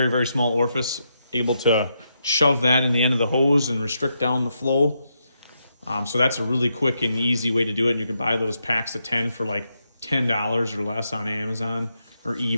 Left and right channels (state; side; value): inverted; both; correlation -0.82